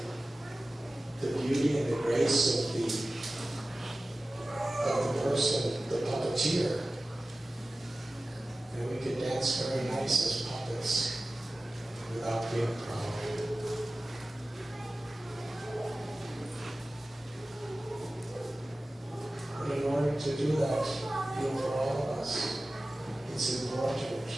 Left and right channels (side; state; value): both; normal; correlation 0.96